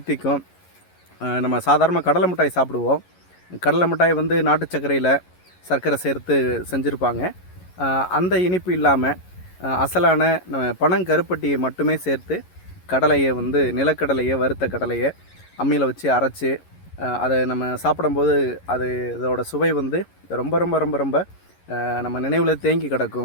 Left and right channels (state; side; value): late; right; 11 ms